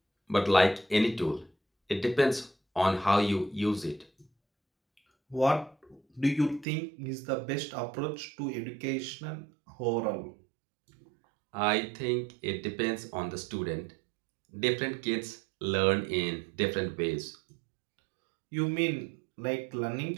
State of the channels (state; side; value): drops out; left; at 6.7 s